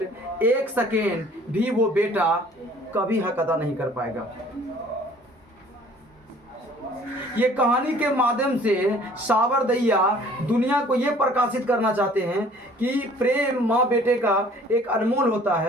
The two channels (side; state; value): both; normal; correlation 0.53